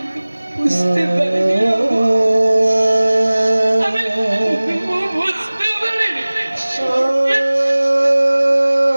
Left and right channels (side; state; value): both; inverted; correlation -1.00